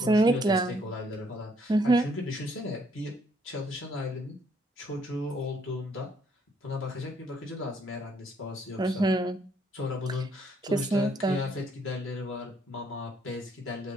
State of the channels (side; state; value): both; normal; correlation 0.68